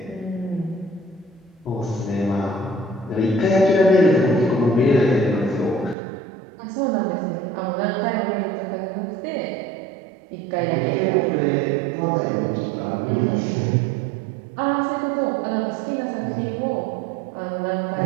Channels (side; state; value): left; drops out; at 6.0 s